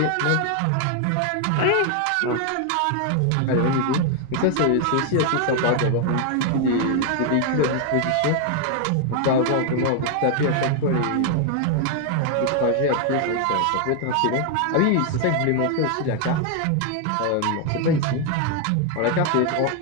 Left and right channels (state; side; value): different; both; correlation 0.00